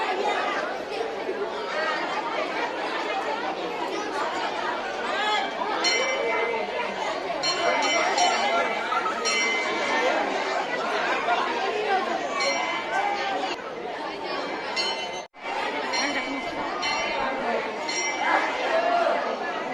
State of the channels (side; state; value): both; identical; correlation 1.00